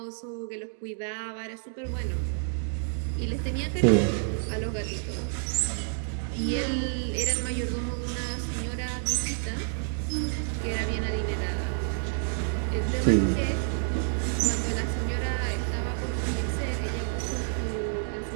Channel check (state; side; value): silent; left; digital silence